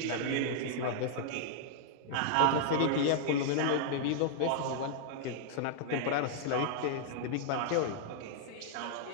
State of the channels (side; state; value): both; different; correlation -0.01